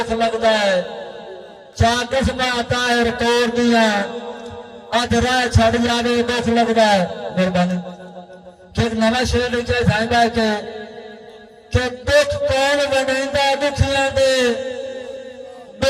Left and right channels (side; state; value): both; identical; correlation 1.00